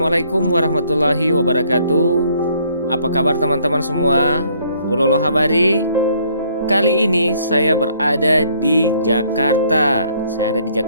warahmatullahi wabarakatuh. Apa kabar teman-teman semua? Ulolo Habari. Kali ini saya berada di Jakarta. Saya ada di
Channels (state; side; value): inverted; both; correlation -0.64